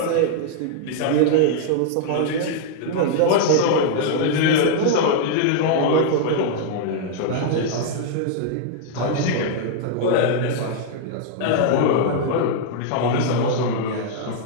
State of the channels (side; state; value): both; different; correlation -0.01